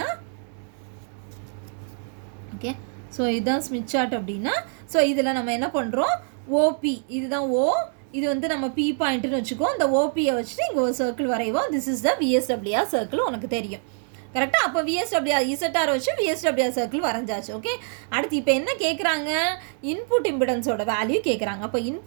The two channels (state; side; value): silent; left; 57 dB below the other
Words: ஓகே ஸோ இதுதான் ஸ்மித் சார்ட் அப்படின்னா ஸோ இதில் நம்ம என்ன பண்ணுறோம் ஓபி இதுதான் இது வந்து நம்ம பி பாயிண்ட்டுன்னு வச்சுக்கோ. இந்த ஓபியை வச்சுட்டு இங்கே ஒரு சர்க்கிள் வரைவோம். This is the VSWR circle உனக்கு தெரியும் கரெக்டாக. அப்போ விஎஸ்டபிள்யூஆர் இசட்டார் வச்சு விஎஸ்டபிள்யூஆர் சர்க்கிள் வரைஞ்சாச்சு. ஓகே அடுத்து இப்போ என்ன கேட்குறாங்க இன்புட் இம்பிடன்ஸோட வேல்யூ கேட்குறாங்க. அப்போ